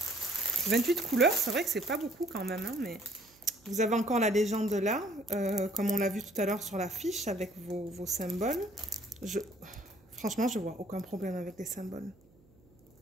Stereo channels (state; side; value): noise; right; hum, 29 dB below the sound